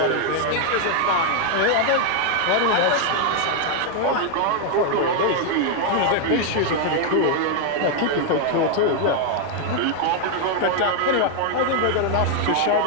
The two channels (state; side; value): different; both; correlation 0.00